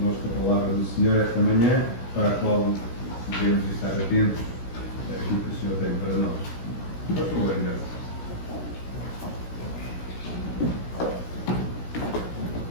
a palavra do Senhor esta manhã, para a qual devemos estar atentos àquilo que o Senhor tem para nós. Por favor, Anderson.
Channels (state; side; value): late; right; 16 ms